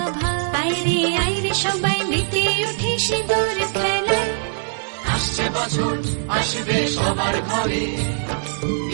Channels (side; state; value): left; silent; digital silence